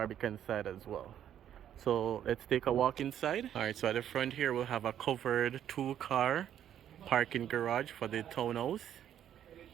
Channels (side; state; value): left; quieter; 10.3 dB